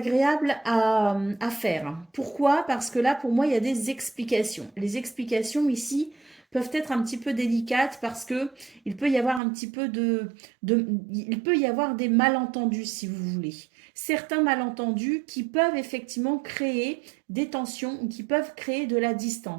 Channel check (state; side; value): drops out; left; at 9.4 s